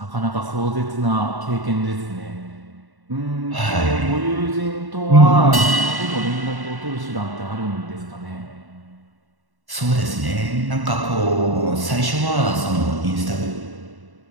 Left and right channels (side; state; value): left; late; 1.1 ms